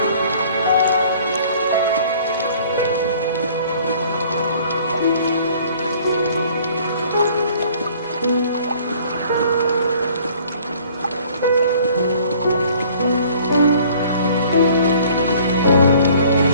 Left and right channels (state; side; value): inverted; both; correlation -0.55